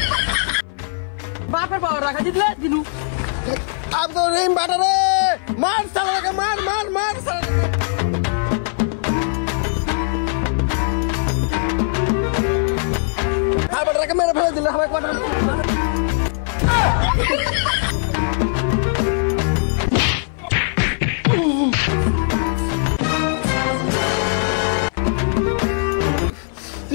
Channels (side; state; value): right; silent; 58 dB below the other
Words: বাপের পাওয়ার রাখা দিলে দিনু আব্দুর রহিম বাটা রে মার শালাকে মার হ্যাঁ বাটাকে মেরে ফেলে দিলে আমাকে বাটা